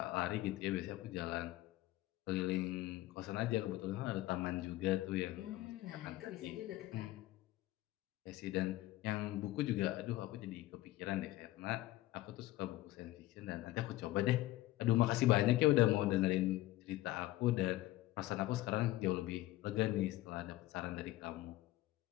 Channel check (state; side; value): quieter; right; 16.7 dB